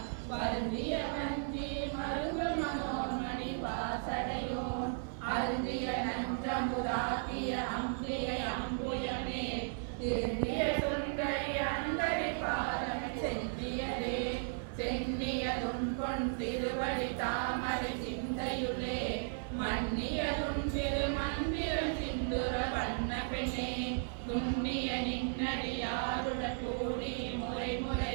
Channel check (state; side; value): silent; left; 54 dB below the other